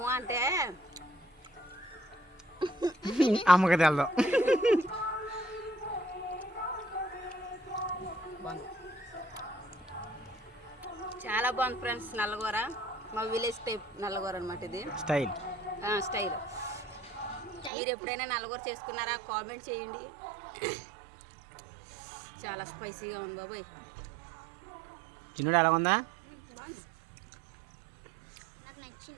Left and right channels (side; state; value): left; drops out; at 17.7 s